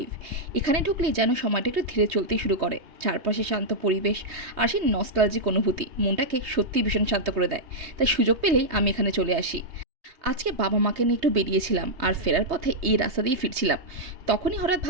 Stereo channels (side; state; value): left; late; 3.2 ms